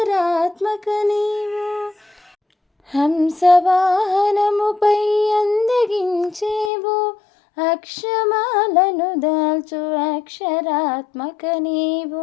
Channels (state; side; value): drops out; right; at 6.7 s